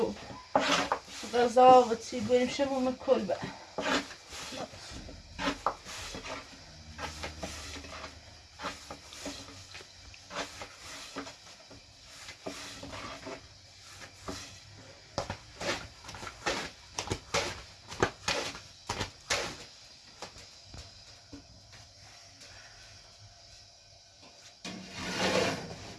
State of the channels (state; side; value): identical; both; correlation 1.00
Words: غذا و چی بریم شموم کلبه